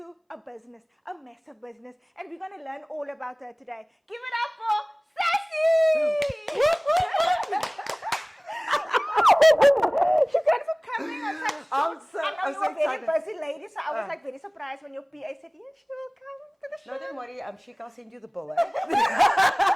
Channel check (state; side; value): identical; both; correlation 1.00